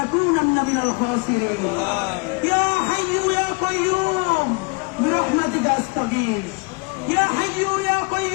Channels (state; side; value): quieter; right; 30.8 dB